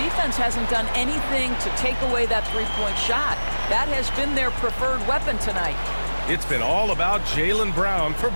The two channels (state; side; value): inverted; both; correlation -1.00